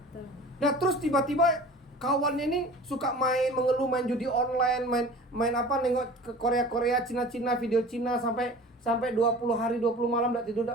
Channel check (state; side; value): normal; both; correlation 0.41